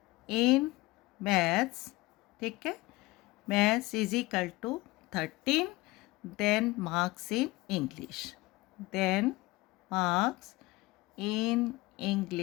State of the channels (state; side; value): quieter; right; 20.9 dB